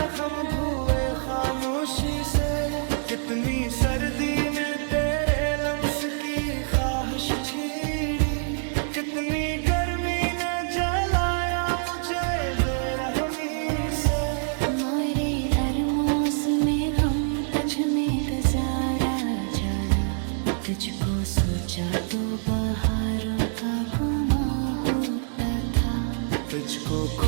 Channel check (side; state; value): left; silent; digital silence